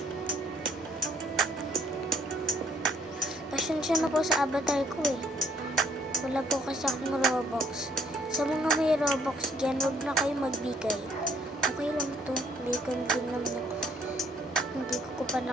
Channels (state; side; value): normal; both; correlation 0.63